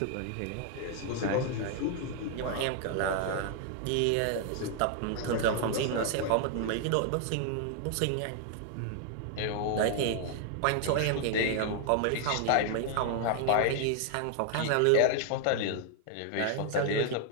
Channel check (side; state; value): both; different; correlation 0.00